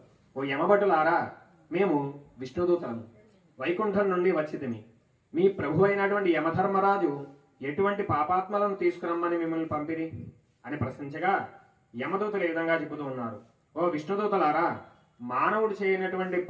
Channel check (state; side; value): identical; both; correlation 1.00